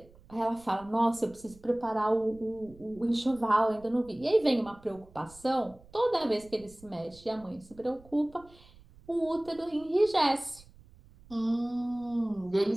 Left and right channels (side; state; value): right; noise; rumble, 24 dB below the sound